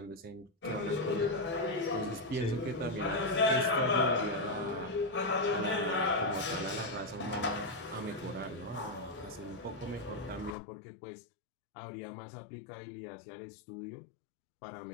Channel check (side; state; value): right; drops out; at 10.6 s